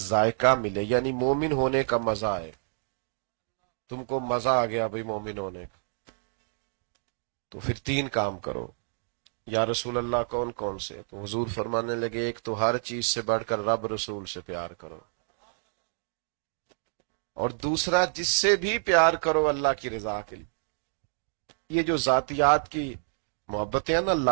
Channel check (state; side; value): silent; left; digital silence